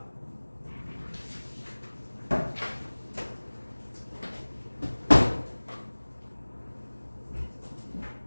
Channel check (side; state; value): both; inverted; correlation -1.00